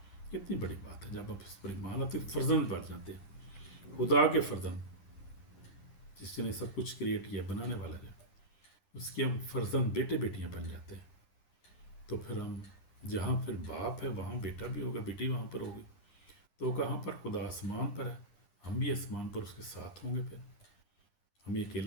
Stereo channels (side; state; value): right; late; 9.8 ms